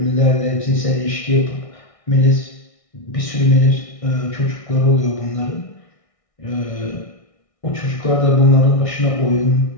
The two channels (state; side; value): late; right; 1.6 ms